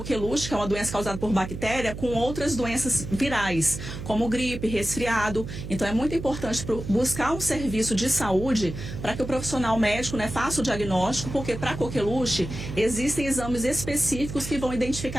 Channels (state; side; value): noise; right; hum, 8 dB below the sound